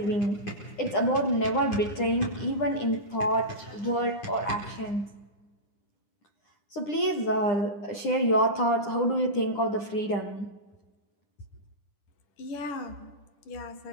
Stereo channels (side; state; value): right; late; 9.9 ms